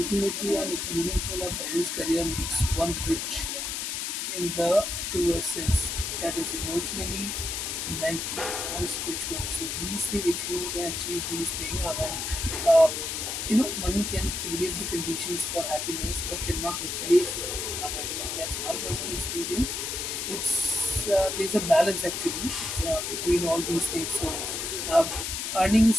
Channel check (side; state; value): left; noise; hiss, 3 dB below the sound